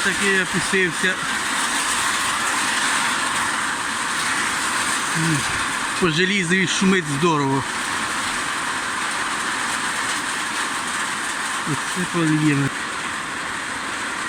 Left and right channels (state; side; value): identical; both; correlation 1.00